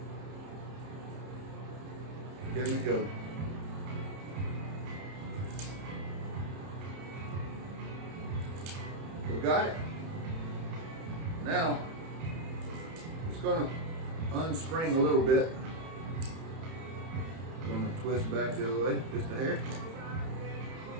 Here we go. We got it. Now, it's going to unspring a little bit. I'm going to twist back the other way, just a hair.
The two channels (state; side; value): late; left; 31 ms